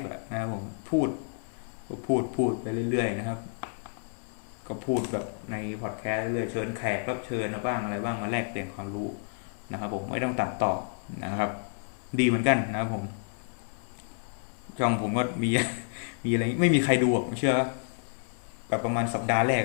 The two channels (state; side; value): silent; right; 58 dB below the other